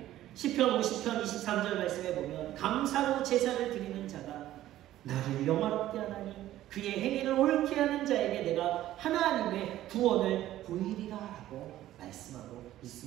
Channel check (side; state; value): left; quieter; 13.8 dB